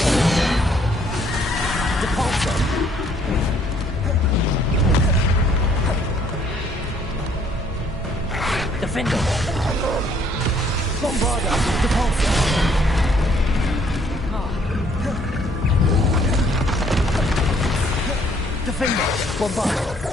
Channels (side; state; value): both; normal; correlation 0.63